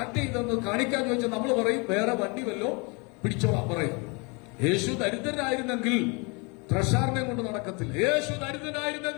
ചെയ്തൊന്ന് കാണിക്കാൻ ചോദിച്ചാൽ നമ്മൾ പറയും വേറെ വണ്ടി വല്ലോ പിടിച്ചോളാം പറയും. യേശു ദരിദ്രനായിരുന്നെങ്കിൽ ട്രഷാറിനെ കൊണ്ട് നടക്കത്തില്ല. യേശു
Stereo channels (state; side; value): quieter; right; 30.6 dB